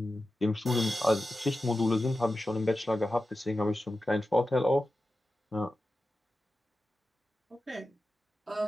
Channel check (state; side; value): normal; both; correlation 0.93